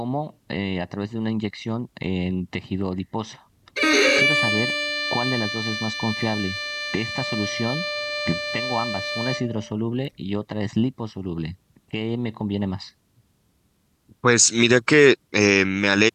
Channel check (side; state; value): both; identical; correlation 1.00